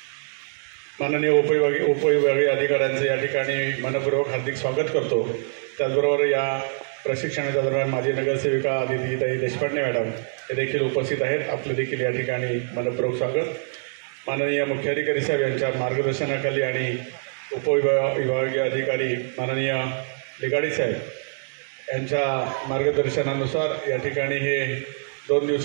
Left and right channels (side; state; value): left; silent; digital silence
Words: माननीय उपविभागीय अधिकाऱ्यांचे या ठिकाणी मनपूर्वक हार्दिक स्वागत करतो। त्याचबरोबर या प्रशिक्षणाच्या दरम्यान माझी नगरसेविका आदितीताई देशपांडे मॅडम हे देखील उपस्थित आहेत। आपले देखील या ठिकाणी मनपूर्वक स्वागत। माननीय मुख्याधिकारी साहेब यांच्या मार्गदर्शनाखाली आणि उपविभागीय अधिकारी माननीय लिगाडे साहेब यांच्या मार्गदर्शनानुसार या ठिकाणी हे 2